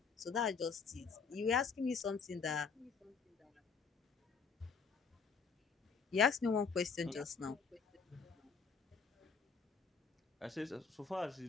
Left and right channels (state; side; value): quieter; right; 5.5 dB